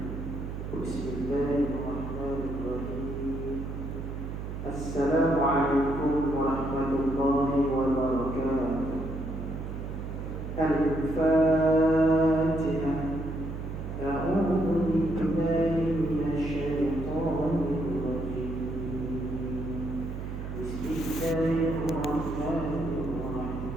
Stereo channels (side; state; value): right; noise; hum, 6 dB below the sound